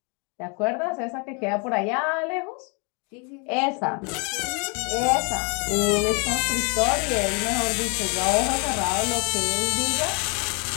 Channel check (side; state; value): right; quieter; 34.7 dB